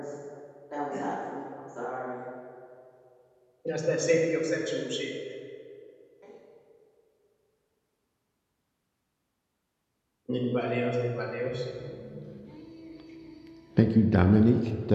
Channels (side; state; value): both; identical; correlation 1.00